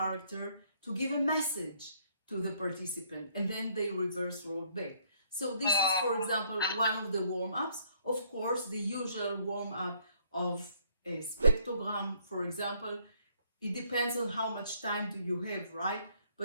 to give a message to the participant, and then they reverse role back. So this is, for example, one of the warm-ups. Of course, the usual warm-up of a spectrogram, for example, it depends on how much time do you have, right?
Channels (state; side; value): inverted; both; correlation -0.65